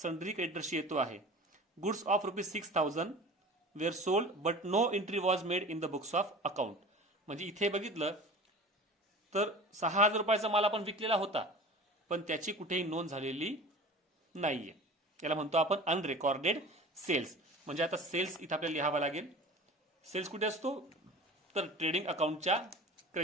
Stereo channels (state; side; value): normal; both; correlation 0.38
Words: क्रेडिटर्सशी येतो आहे. Goods of ₹6,000 were sold but no entry was made in the books of account. म्हणजे इथे बघितलं तर 6,000 रुपयाचा माल आपण विकलेला होता, पण त्याची कुठेही नोंद झालेली नाहीये. याला म्हणतो आपण अनरेकॉर्डेड सेल्स. म्हणजे आता सेल्स इथे आपल्याला लिहावा लागेल. सेल्स कुठे असतो, तर ट्रेडिंग अकाउंटच्या